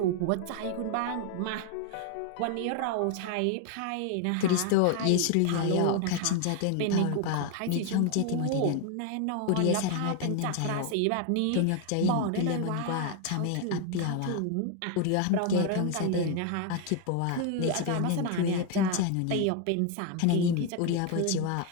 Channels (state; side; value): different; both; correlation 0.01